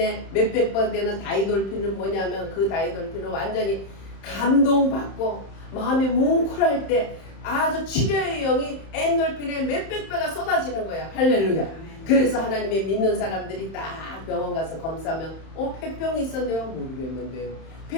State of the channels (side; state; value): right; late; 31 ms